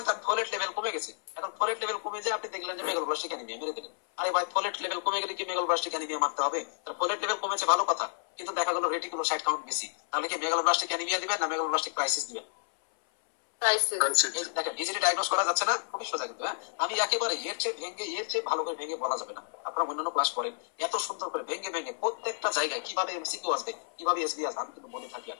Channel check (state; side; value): silent; right; 57 dB below the other